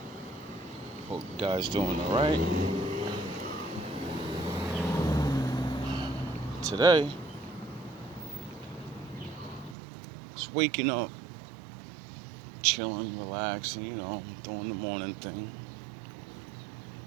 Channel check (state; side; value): drops out; left; at 9.8 s